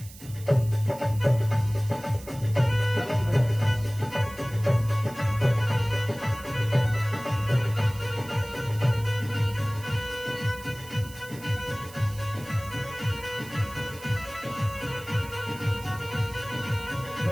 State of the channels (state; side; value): noise; right; hiss, 18 dB below the sound